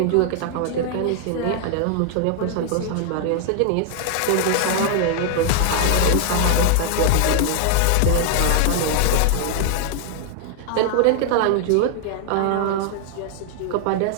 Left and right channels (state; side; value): different; both; correlation 0.00